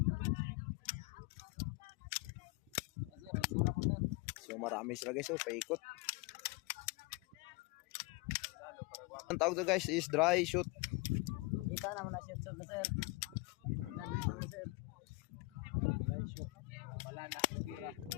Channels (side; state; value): right; quieter; 24.1 dB